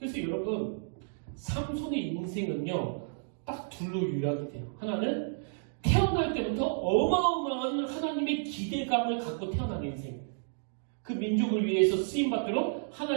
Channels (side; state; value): left; silent; digital silence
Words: 여러분 삼손의 인생은요 딱 둘로 요약이 돼요. 하나는 태어날 때부터 어마어마한 하나님의 기대감을 갖고 태어난 인생, 그 민족을 위해서 쓰임받도록